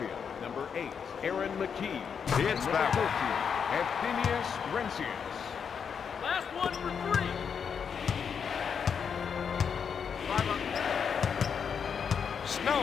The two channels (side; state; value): right; quieter; 6.9 dB